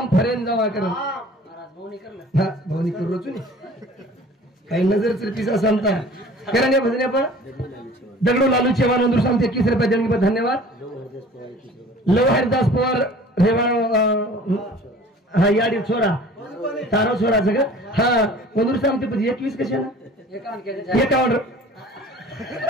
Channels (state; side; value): normal; both; correlation 0.46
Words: फरेन जमा करत हा हा भावनी करू रोचू नी काही नजर पिसा सांगता करा नाही भजने पण दगडू लालू चेवान नंदूर सांगते 21 रुपये देणगी पर धन्यवाद लव हरिदास पवार रेवाण हा याडी छोरा तारो छोराचं का हा नंदूर सांगते पण 21 कशाला 51